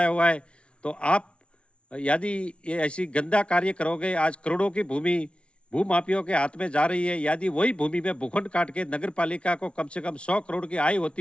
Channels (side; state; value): right; late; 0.059 ms